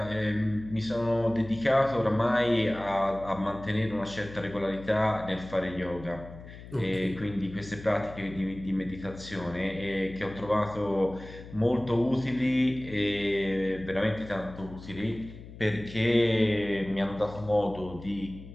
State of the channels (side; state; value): left; noise; hum, 15 dB below the sound